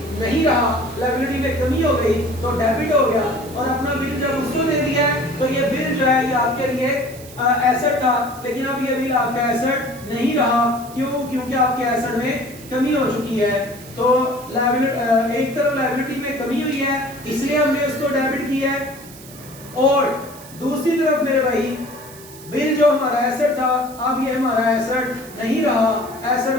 नहीं रहा, लायबिलिटी में कमी हो गई तो डेबिट हो गया और अपना बिल जब उसको दे दिया तो ये बिल जो है ये आपके लिए एसेट था लेकिन अब ये बिल आपका एसेट नहीं रहा। क्यों? क्योंकि आपके एसेट में कमी हो चुकी है। तो एक तरफ लायबिलिटी में कमी हुई है इसलिए हमने उसको डेबिट किया है और दूसरी तरफ मेरे भाई बिल जो हमारा एसेट था अब ये हमारा एसेट नहीं रहा, एसेट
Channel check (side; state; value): right; noise; hiss, 19 dB below the sound